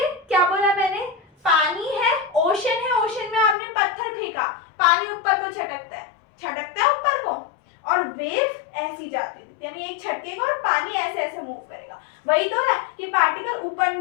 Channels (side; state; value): right; drops out; at 3.6 s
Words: क्या बोला मैंने, पानी है, ओशन है, ओशन में आपने पत्थर फेंका, पानी ऊपर को छटकता है ऊपर को, और वेव ऐसी जाती है, यानी एक छटकेगा और पानी ऐसे ऐसे मूव करेगा। वही तो है कि पार्टिकल ऊपर